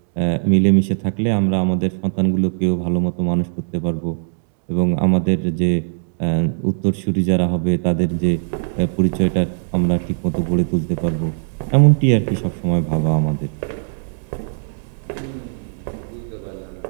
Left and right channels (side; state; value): left; silent; digital silence